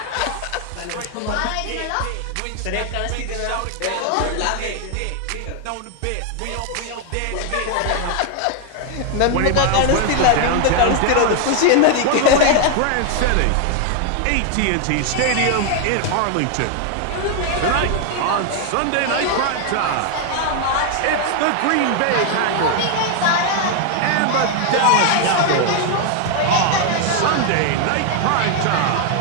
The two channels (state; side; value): different; both; correlation 0.00